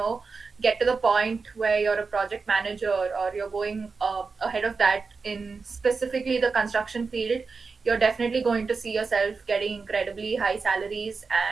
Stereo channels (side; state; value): left; quieter; 4.7 dB